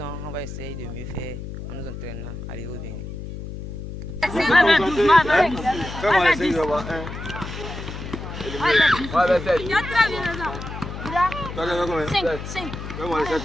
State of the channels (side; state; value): left; noise; hum, 9 dB below the sound